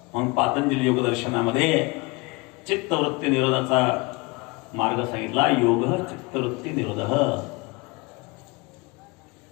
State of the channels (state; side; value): quieter; right; 26.1 dB